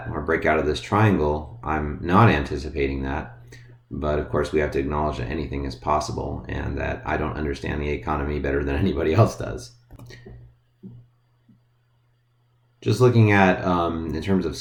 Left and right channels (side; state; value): both; identical; correlation 1.00